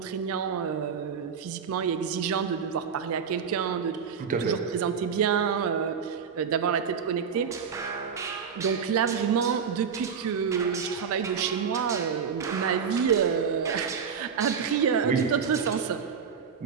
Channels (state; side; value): quieter; left; 6.7 dB